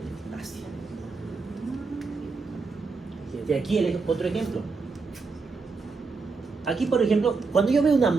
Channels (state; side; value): quieter; left; 4.4 dB